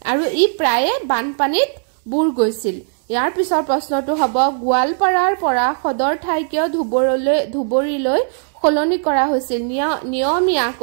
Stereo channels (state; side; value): silent; left; 64 dB below the other